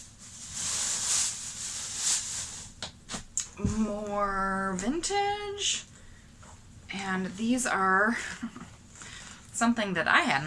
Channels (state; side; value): identical; both; correlation 1.00